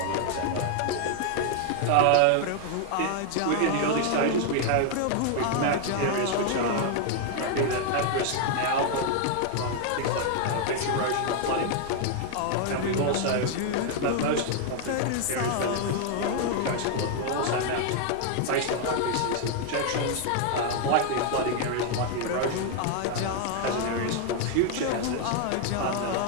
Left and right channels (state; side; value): different; both; correlation 0.00